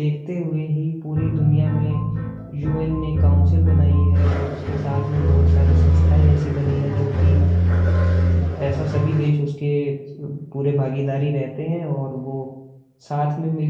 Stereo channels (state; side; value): identical; both; correlation 1.00